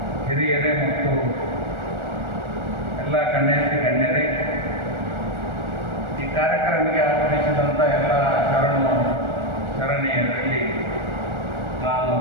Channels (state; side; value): late; left; 1.4 ms